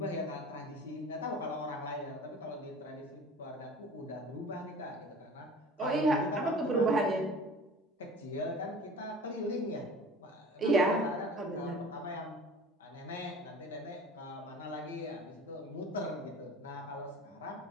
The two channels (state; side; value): normal; both; correlation 0.42